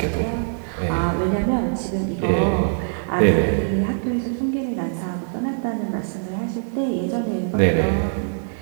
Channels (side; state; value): left; silent; digital silence